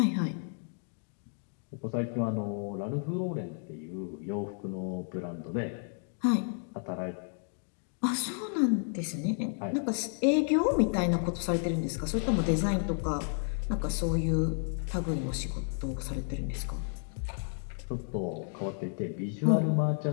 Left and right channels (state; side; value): silent; right; 56 dB below the other